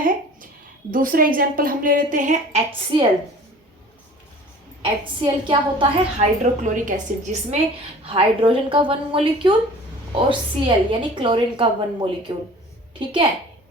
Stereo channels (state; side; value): normal; both; correlation 0.45